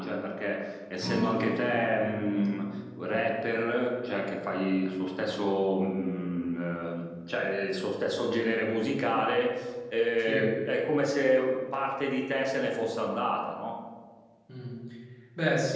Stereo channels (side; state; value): both; identical; correlation 1.00